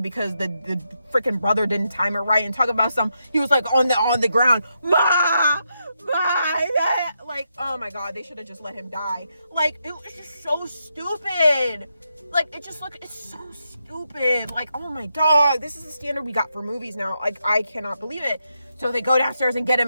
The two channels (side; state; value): both; inverted; correlation -0.82